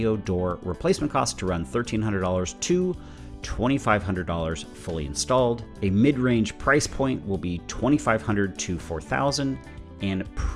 door replacement costs to run $1,300 to $2,500 fully installed. A mid-range price point will be $2,500 to $4,000, and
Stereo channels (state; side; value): identical; both; correlation 1.00